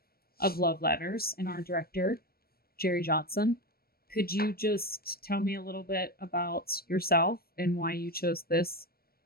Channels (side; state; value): right; late; 0.44 ms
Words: of Love Letters and our director, Jerry Johnson. Could you just tell me a little bit about yourself and why you chose this